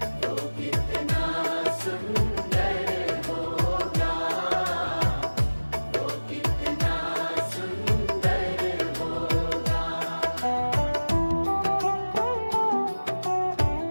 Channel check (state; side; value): inverted; both; correlation -1.00